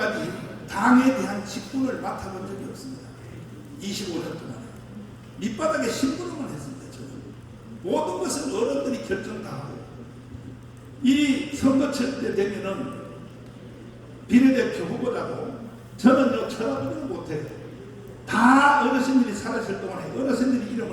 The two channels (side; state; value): both; identical; correlation 1.00